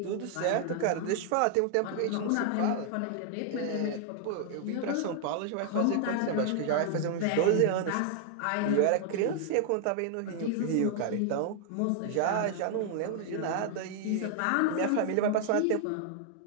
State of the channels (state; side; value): different; both; correlation 0.00